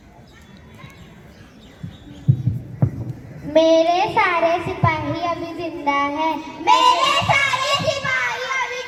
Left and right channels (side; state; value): both; identical; correlation 1.00